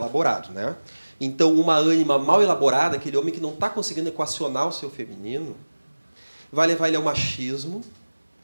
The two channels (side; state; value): both; inverted; correlation -1.00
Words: né? Então, uma ânima mal elaborada, aquele homem que não está conseguindo equacionar o seu feminino, vai levar ele ao machismo,